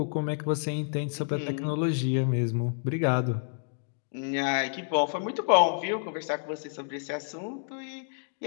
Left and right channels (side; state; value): right; silent; digital silence